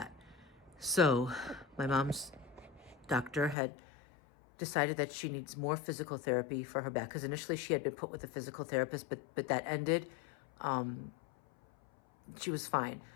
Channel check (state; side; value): drops out; right; at 3.6 s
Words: So, my mom's doctor had decided that she needs more physical therapy for her back, because initially she had been put with a physical therapist, but that ended. She was fine,